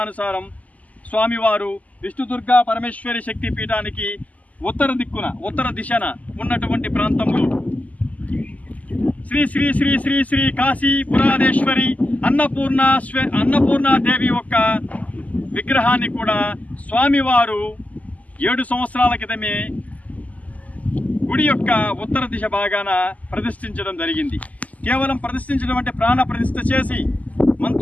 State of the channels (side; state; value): right; late; 0.075 ms